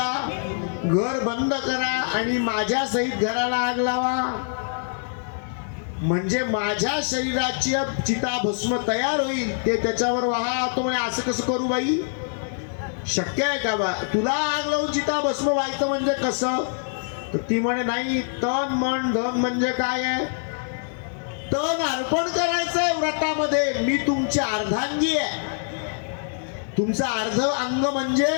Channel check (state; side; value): silent; right; 62 dB below the other